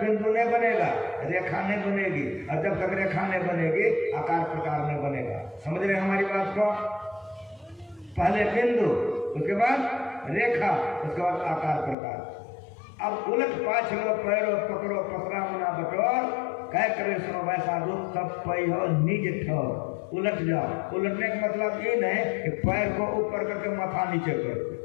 बिंदु नहीं बनेगा रेखा नहीं बनेगी, और जब तक रेखा नहीं बनेगी आकार प्रकार नहीं बनेगा। समझ रहे हैं हमारी बात को? पहले बिंदु, उसके बाद रेखा, उसके बाद आकार प्रकार। अब उलट पाछ लो पैरो पकड़ो पसरा मना बटोर, कह करे सुनो वैसा रूप तब पई हो निज ठोर। उलट जाओ। उलटने का मतलब ये नहीं कि पैर को ऊपर करके माथा नीचे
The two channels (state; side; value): drops out; right; at 12.0 s